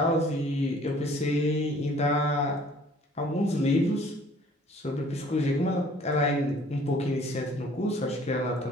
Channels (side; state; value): both; normal; correlation 0.55